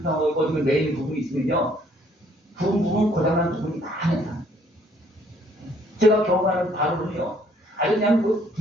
어떤 매이는 부분이 있으면요. 부분 고장난 부분이 많아요. 제가 경험하는 바로는요. 아주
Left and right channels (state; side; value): normal; both; correlation 0.63